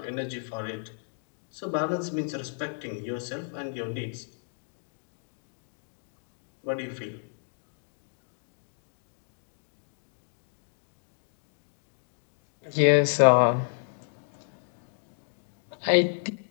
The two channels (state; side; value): silent; right; digital silence